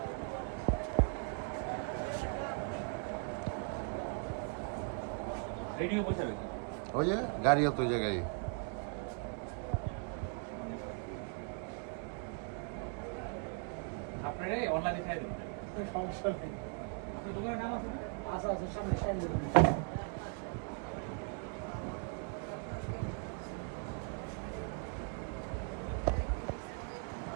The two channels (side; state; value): left; quieter; 39.8 dB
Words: রেডিও বসে রয়েছে। ওই যে গাড়িও তো ওই জায়গায়। আপনারা অনলাইনে খাই দেবেন। সমস্যা নেই। আপনার দোকানের নাম আছে না? আচ্ছা আচ্ছা, সামনে সামনে দেবেন।